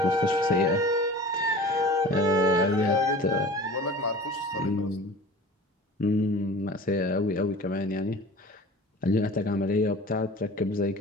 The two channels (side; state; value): both; normal; correlation 0.40